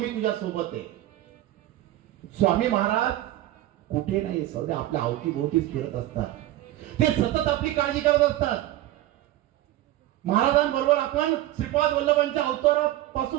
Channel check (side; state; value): left; quieter; 15.0 dB